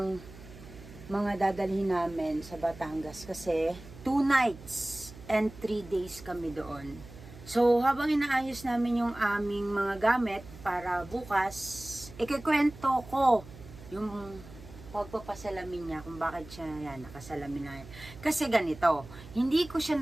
mga dadalhin namin sa Batangas. Kasi 2 nights and 3 days kami doon. So, habang inaayos namin yung aming mga gamit para bukas, ikikwento ko yung pagpapasalamin niya kung bakit siya nakasalamin na yan. Kasi ganito, hindi ko siya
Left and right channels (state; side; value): noise; right; hum, 17 dB below the sound